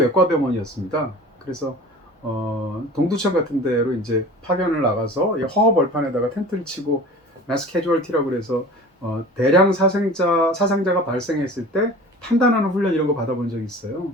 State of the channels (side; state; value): both; normal; correlation 0.40